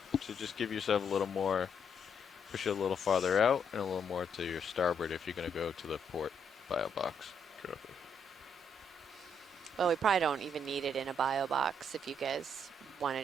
So just give yourself a little more, push it a little farther out and a little more to your starboard if you're going to go to the port bio box. Copy. Well, we probably don't even need it in a bio box. If you guys want to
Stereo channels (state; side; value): normal; both; correlation 0.73